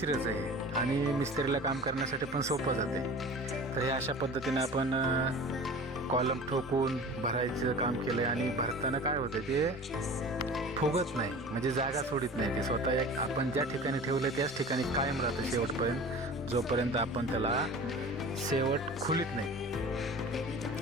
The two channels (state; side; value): normal; both; correlation 0.39